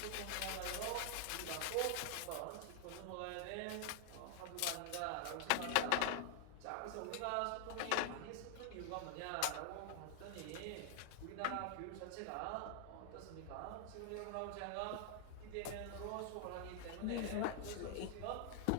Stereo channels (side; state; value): both; different; correlation 0.00